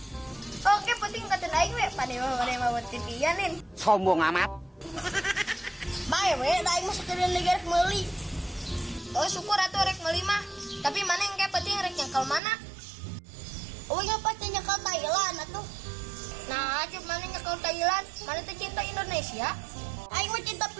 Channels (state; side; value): drops out; left; at 12.4 s